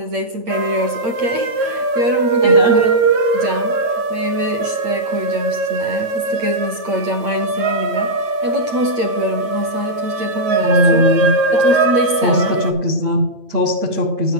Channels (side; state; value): left; late; 8.7 ms